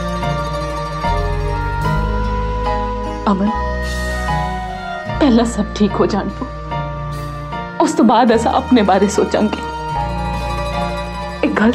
अमन, पहला सब ठीक हो जान दो, उस तो बाद असा अपने बारे सोचांगे। एक गल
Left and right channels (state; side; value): identical; both; correlation 1.00